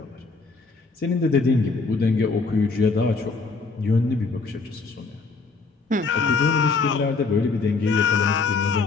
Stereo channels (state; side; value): quieter; right; 4.3 dB